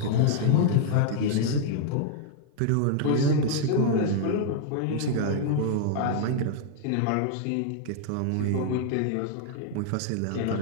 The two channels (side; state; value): both; different; correlation -0.01